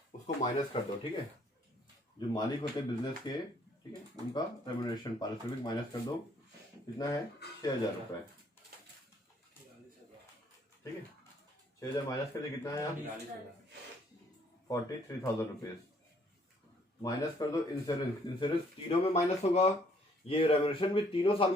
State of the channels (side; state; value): both; normal; correlation 0.64